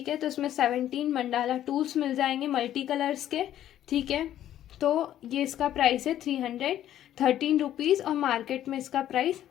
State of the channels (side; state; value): right; quieter; 11.8 dB